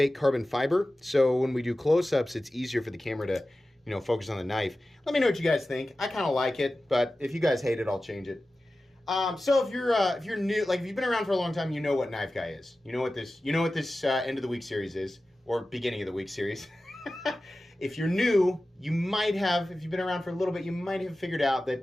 carbon fiber. So when we do close-ups, it's easier for the camera to, focus on the knife. Let me know what you guys think. I kind of like it, but if you guys hate it, I'll change it. So if you're new, like if you've been around for a long time, you know what Knife Guy is. You know what this end of the week series is, or beginning of the week series. If you're new, you might have. If you've been around for a little bit, you might have figured out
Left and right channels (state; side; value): normal; both; correlation 0.95